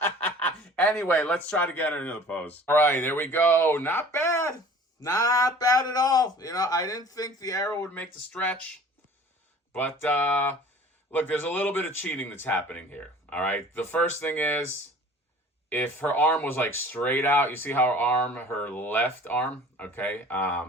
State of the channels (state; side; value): normal; both; correlation 0.46